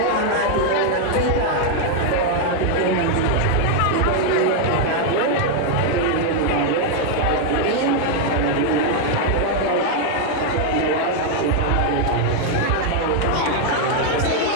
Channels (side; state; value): both; different; correlation 0.00